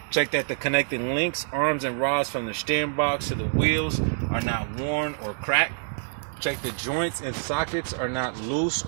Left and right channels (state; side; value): silent; left; 60 dB below the other